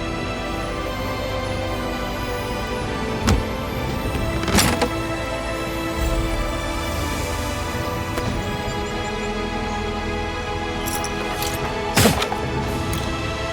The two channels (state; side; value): identical; both; correlation 1.00